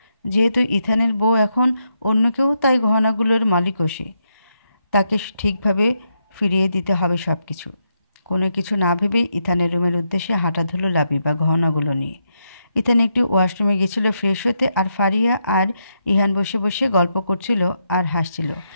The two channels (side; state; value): both; inverted; correlation -0.81